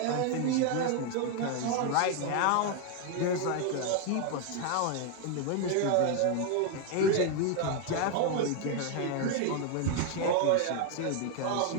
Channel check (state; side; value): different; both; correlation 0.01